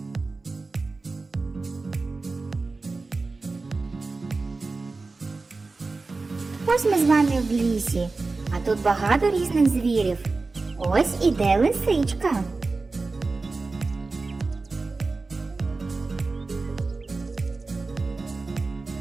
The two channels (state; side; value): quieter; left; 3.7 dB